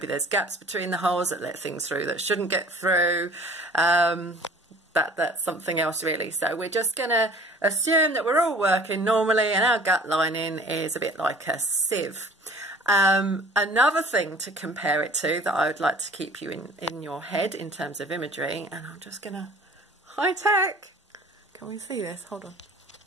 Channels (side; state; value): both; normal; correlation 0.48